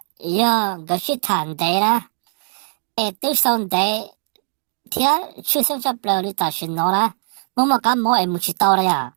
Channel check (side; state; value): left; silent; digital silence